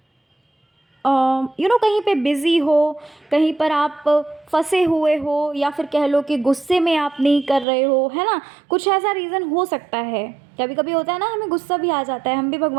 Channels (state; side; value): drops out; left; at 7.7 s